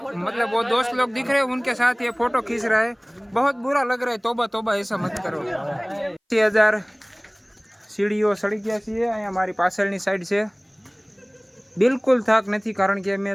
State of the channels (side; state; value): both; identical; correlation 1.00